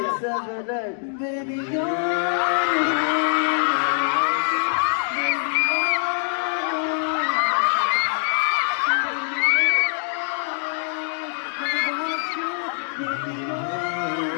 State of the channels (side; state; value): right; silent; digital silence